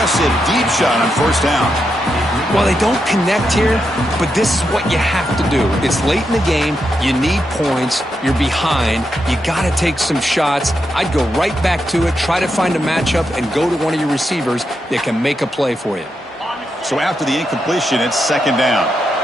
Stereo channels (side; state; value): both; normal; correlation 0.84